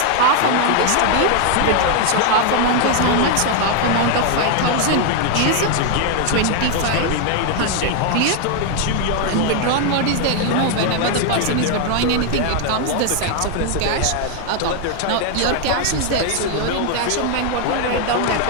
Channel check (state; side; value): different; both; correlation 0.00